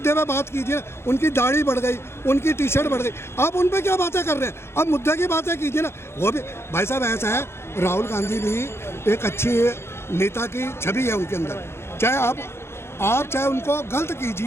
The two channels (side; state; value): right; late; 0.12 ms